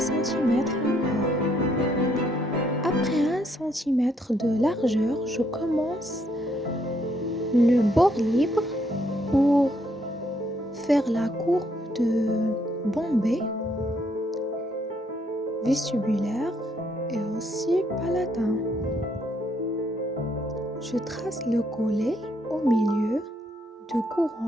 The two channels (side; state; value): both; normal; correlation 0.71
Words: encore. Après 1 cm de largeur, je commence le bord libre pour faire la courbe de bombée vestibulaire et aussi palatin. Je trace le collet au milieu de